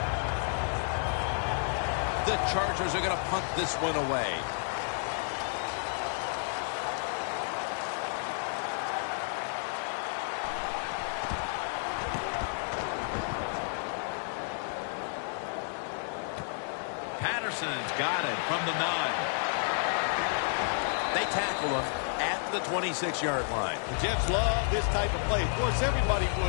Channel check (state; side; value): silent; right; digital silence